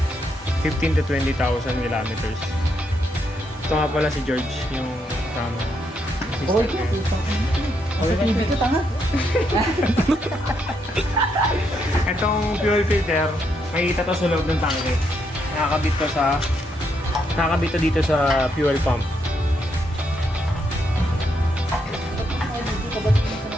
15 to 20,000 kilometers. Ito nga pala si George, yung tama. Oh, sa TV ko, tanga. Itong fuel filter, makikita to sa loob ng tangke. Nakakabit to dito sa fuel pump.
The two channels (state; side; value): normal; both; correlation 0.77